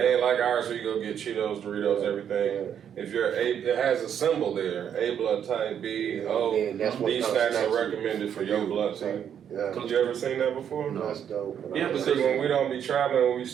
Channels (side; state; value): left; quieter; 8.8 dB